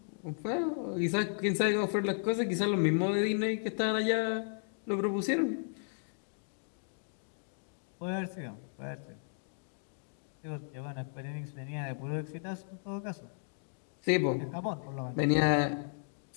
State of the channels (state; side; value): silent; right; digital silence